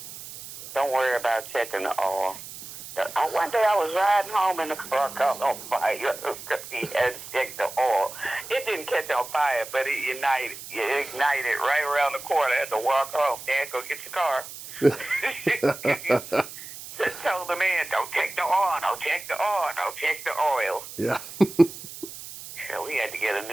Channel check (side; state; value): right; noise; hiss, 13 dB below the sound